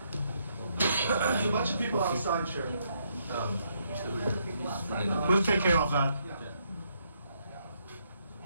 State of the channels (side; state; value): both; inverted; correlation -0.74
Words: There's a bunch of people outside, Chair. We'll take care of that.